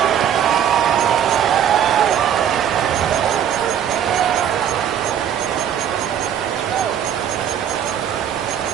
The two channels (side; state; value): left; quieter; 9.3 dB